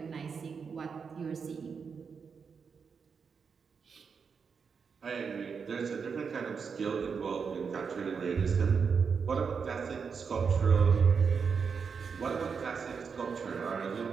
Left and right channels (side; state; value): left; quieter; 5.9 dB